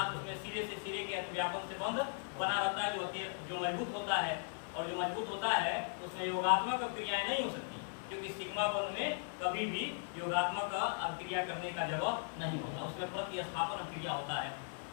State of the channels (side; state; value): right; silent; 52 dB below the other